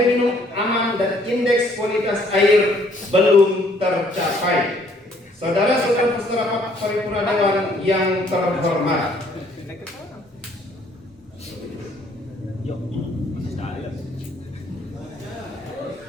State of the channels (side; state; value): both; normal; correlation 0.63